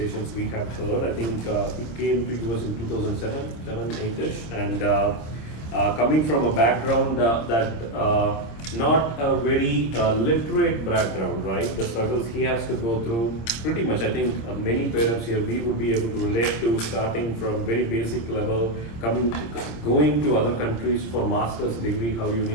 we have heard. I think he came to US in 2007, 8-ish, and coming from a background that not a very literate background, right? The struggles he has to go through, pretty much, I think many parents here, we would be able to relate to, starting from very basic level, going to other countries for master's degree, how you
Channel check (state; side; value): late; right; 26 ms